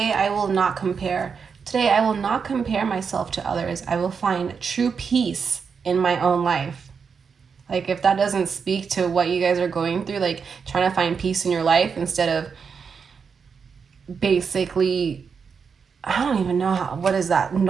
I will not compare. Today I will not compare myself to others. I will find true peace in my own life. Like, if that doesn't speak to what you guys are going through, like trying to find peace in your life instead of basically, I don't even know how, what is that?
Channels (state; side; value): quieter; left; 6.0 dB